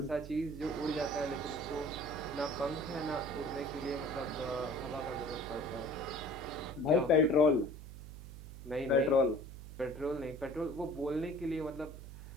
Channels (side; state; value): right; noise; hum, 12 dB below the sound